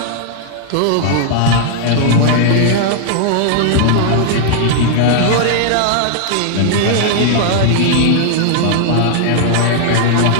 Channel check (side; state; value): both; different; correlation 0.00